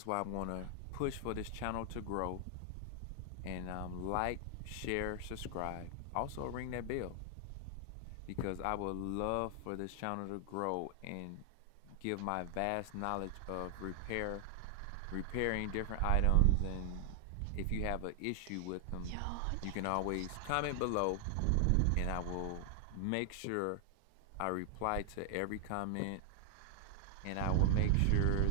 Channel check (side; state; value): both; different; correlation 0.00